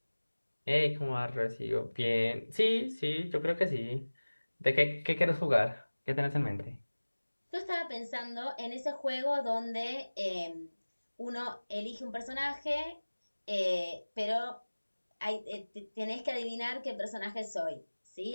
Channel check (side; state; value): both; inverted; correlation -1.00